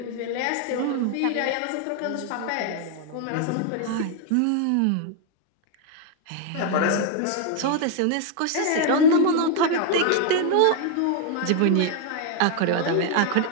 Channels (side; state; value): both; different; correlation 0.00